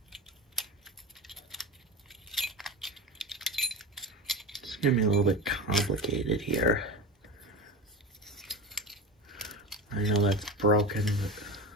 It's going to be a little bit complicated here. I know that's broken, but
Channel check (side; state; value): both; normal; correlation 0.27